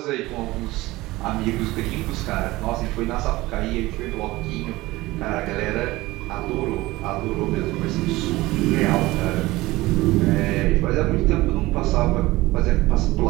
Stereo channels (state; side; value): quieter; left; 19.2 dB